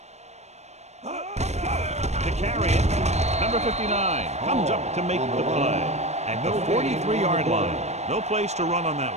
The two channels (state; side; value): late; left; 0.32 ms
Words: To carry it, number 59 comes up to make the play at the 43-yard line. No place to run on that